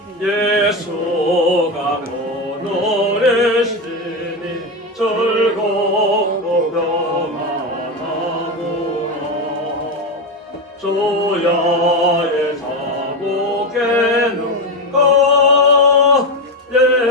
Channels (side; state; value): both; normal; correlation 0.13